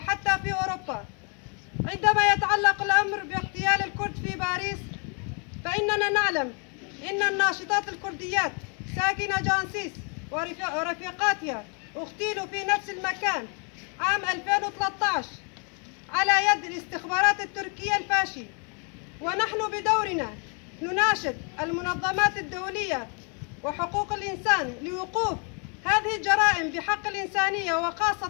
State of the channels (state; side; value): quieter; right; 37.3 dB